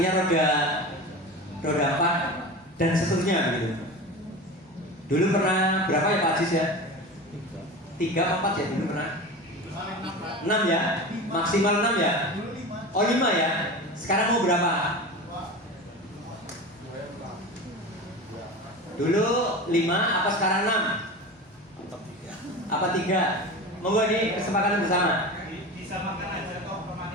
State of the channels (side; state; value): both; normal; correlation 0.30